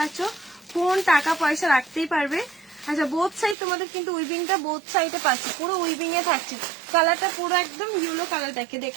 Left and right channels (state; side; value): drops out; left; at 3.6 s